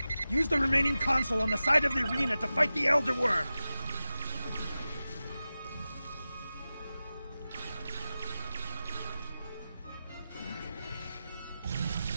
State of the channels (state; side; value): inverted; both; correlation -0.94